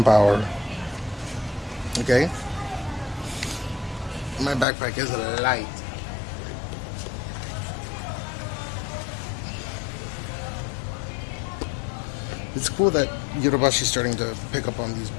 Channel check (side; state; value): right; drops out; at 4.7 s